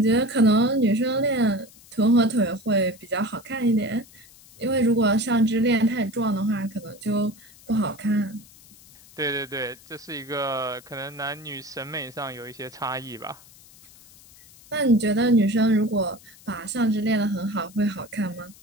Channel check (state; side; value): noise; left; hiss, 23 dB below the sound